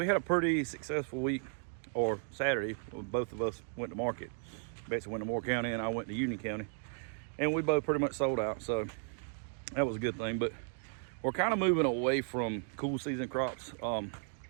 had a pretty successful week, or Saturday. Both of us went to market. Betsy went to Moore County and I went to Union County, and we both pretty much sold out. So that was a good thing. But we're kind of moving away from cool season crops. Our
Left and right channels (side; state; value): left; silent; 54 dB below the other